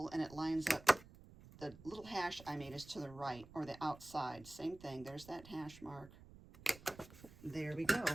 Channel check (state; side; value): noise; right; rumble, 19 dB below the sound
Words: and it lines up. The little hash I made is to the right or the outside. Same thing. There's that hash mark. There we go.